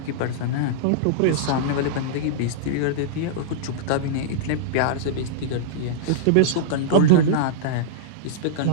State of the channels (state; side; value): different; both; correlation -0.03